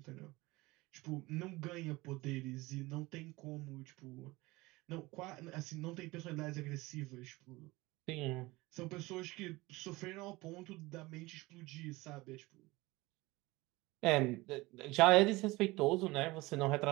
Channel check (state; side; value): quieter; left; 21.3 dB